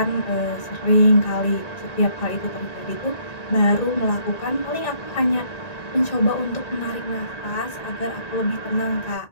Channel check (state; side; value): late; right; 1.9 ms